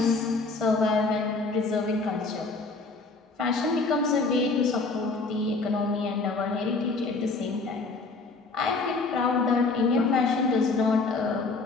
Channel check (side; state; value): right; quieter; 3.8 dB